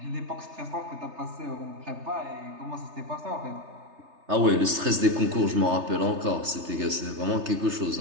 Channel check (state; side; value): late; left; 3.3 ms